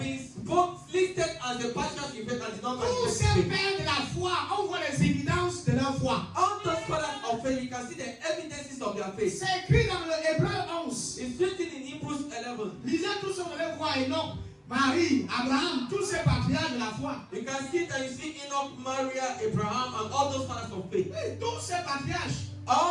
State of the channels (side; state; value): both; identical; correlation 1.00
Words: listed as the patriarchs in faith and did not Tous manifest ces faith? pères de la foi, on voit les évidences de leur foi. All those fathers of faith, you can see the evidences of their faith. C'est écrit dans le Hébreu 11. It's written in Hebrews 11. Lisez tout ce que vous allez voir, Enoch, Marie, Abraham, tous ces patriarches de la foi. You can see that you see Enoch, Maria, Abraham, and all those fathers of faith. Oui, tous ces patriarches.